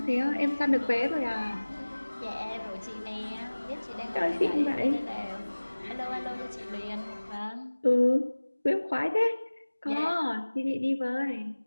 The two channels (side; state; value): both; inverted; correlation -1.00